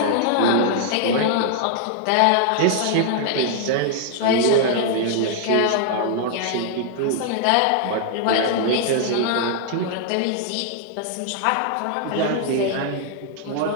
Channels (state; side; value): different; both; correlation -0.01